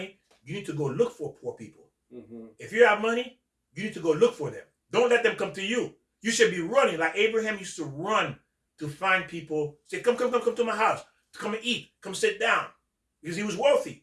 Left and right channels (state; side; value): identical; both; correlation 1.00